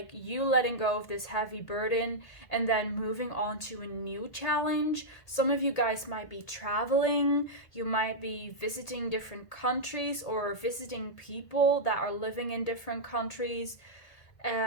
you letting go of this heavy burden and then moving on to a new challenge. Some of you guys might be traveling, you might be visiting different countries or visiting people that are living in different countries.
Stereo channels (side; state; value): right; late; 1.8 ms